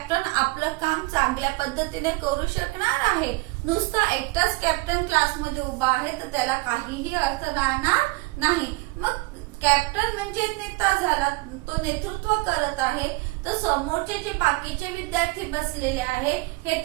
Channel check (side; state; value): left; quieter; 24.4 dB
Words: आपलं काम चांगल्या पद्धतीने करू शकणार आहे. नुसता एकटाच कॅप्टन क्लासमध्ये उभा आहे तर त्याला काहीही अर्थ राहणार नाही. मग कॅप्टन म्हणजे नेता झाला, तो नेतृत्व करत आहे, तर समोरचे जे बाकीचे विद्यार्थी बसलेले आहे हे